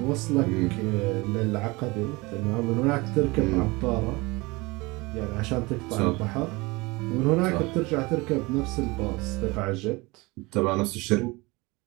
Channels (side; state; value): left; quieter; 23.9 dB